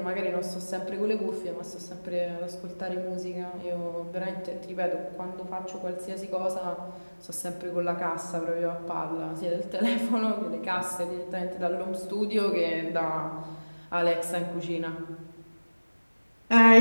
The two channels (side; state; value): both; inverted; correlation -1.00